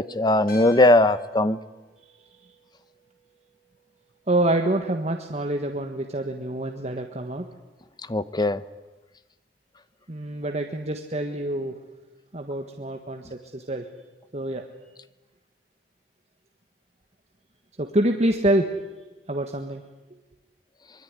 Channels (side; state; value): both; normal; correlation 0.51